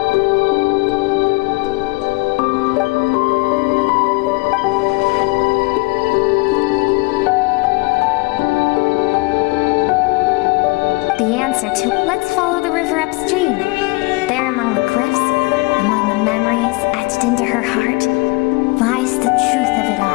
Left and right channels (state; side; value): quieter; right; 26.2 dB